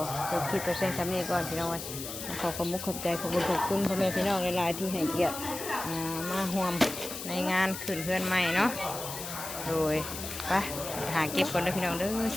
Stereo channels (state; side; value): noise; left; hiss, 8 dB below the sound